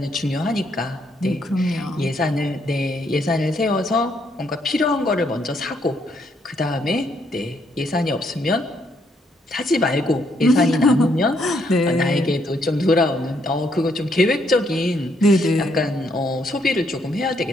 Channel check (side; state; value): both; normal; correlation 0.73